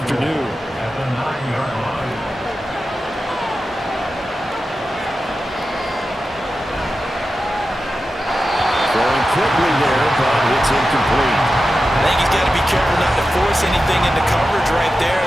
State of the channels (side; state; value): both; normal; correlation 0.92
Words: Throwing quickly there, but it's incomplete. I think he's got to be careful not to force anything into coverage right there.